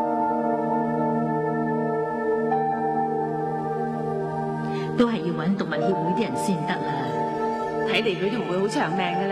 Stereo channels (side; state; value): both; identical; correlation 1.00